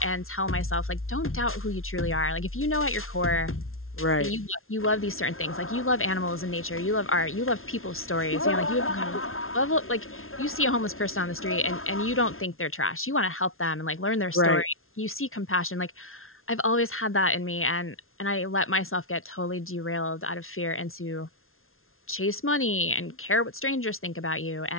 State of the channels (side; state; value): right; late; 0.61 ms